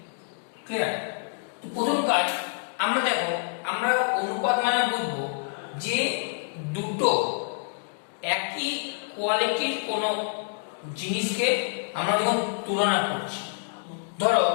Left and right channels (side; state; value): right; silent; digital silence